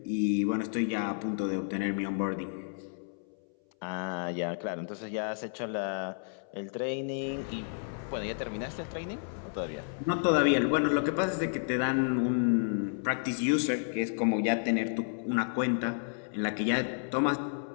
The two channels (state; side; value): silent; right; 57 dB below the other